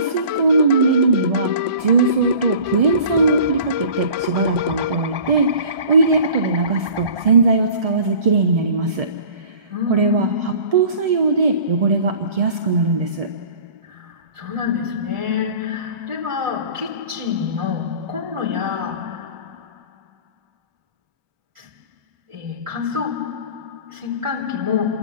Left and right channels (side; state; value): left; late; 1.7 ms